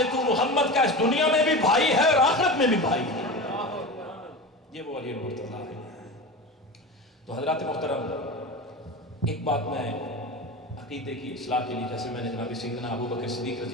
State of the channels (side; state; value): both; normal; correlation 0.28